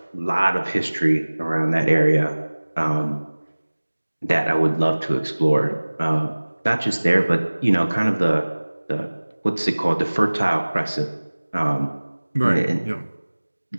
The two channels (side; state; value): both; inverted; correlation -1.00